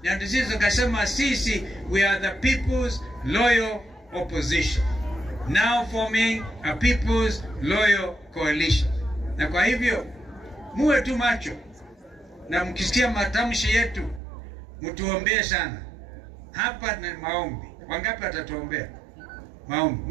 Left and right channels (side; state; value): left; drops out; at 14.2 s